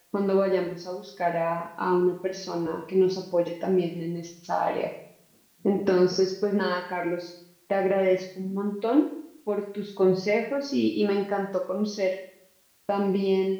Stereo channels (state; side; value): identical; both; correlation 1.00